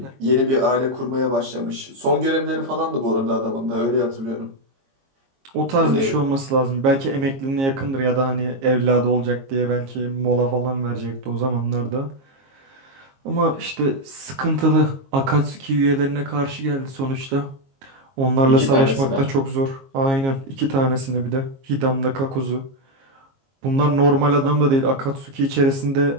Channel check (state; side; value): late; left; 22 ms